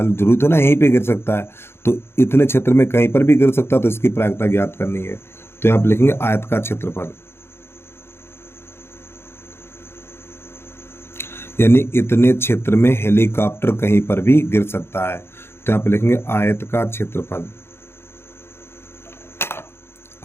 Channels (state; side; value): late; right; 0.12 ms